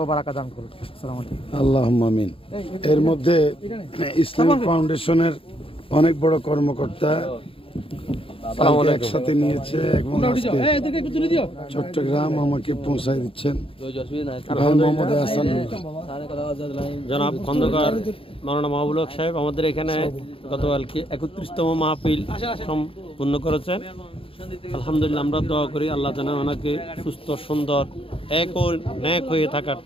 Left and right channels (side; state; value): right; late; 0.27 ms